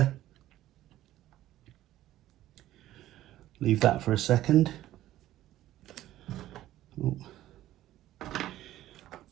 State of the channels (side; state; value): left; quieter; 14.1 dB